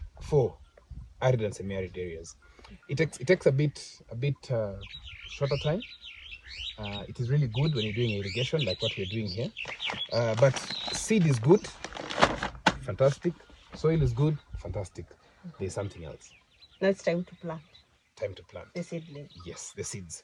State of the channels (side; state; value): both; identical; correlation 1.00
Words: for arid and semi-arid areas. It takes a bit shorter time. It is really good when you're doing irrigation like what we're doing here. But seed is good, fantastic. Soil is good, fantastic. There's something else. Now it's time to plant. Time to plant. The seedling. Yes, the seeds.